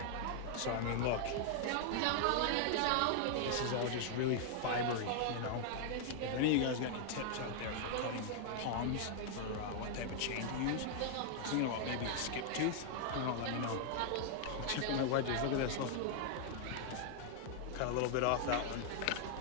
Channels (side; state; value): both; different; correlation 0.00